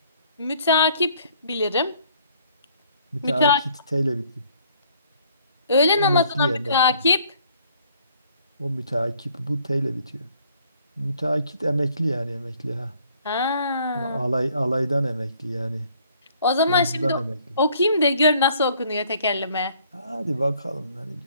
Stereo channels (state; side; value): inverted; both; correlation -0.61